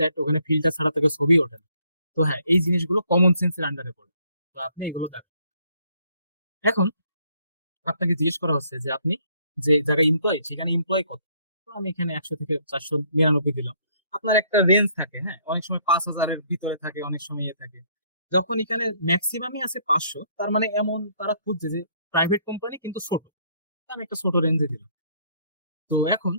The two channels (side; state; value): both; inverted; correlation -0.66